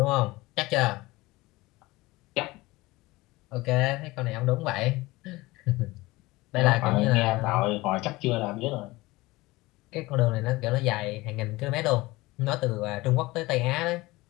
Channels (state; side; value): quieter; right; 20.6 dB